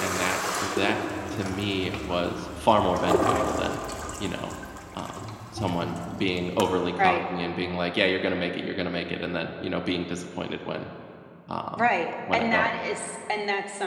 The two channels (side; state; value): both; identical; correlation 1.00